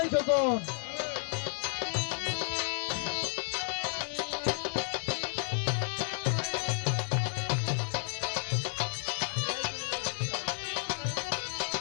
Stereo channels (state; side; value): silent; right; 56 dB below the other